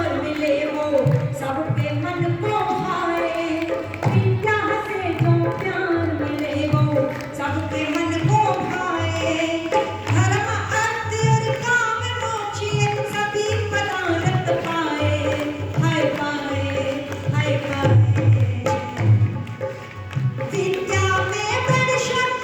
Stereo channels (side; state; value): both; identical; correlation 1.00